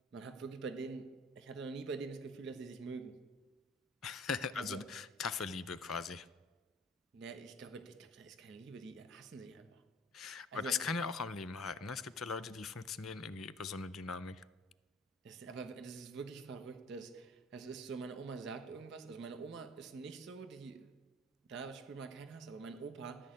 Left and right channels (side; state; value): both; normal; correlation 0.49